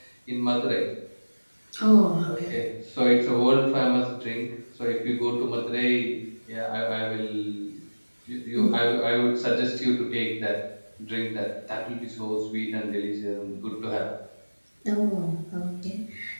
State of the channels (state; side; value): inverted; both; correlation -1.00